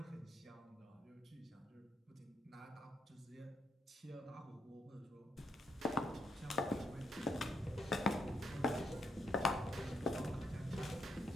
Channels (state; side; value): normal; both; correlation 0.77